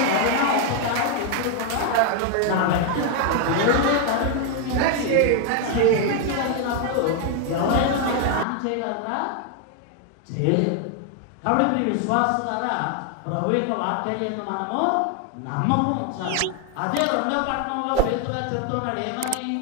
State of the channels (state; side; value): different; both; correlation 0.00